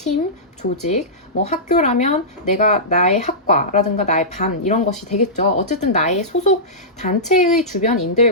조직, 뭐 학교라면 내가 나의 학과라든가 나의 반 이런 것이 되겠죠. 어쨌든 나의 소속 단체의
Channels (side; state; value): both; normal; correlation -0.16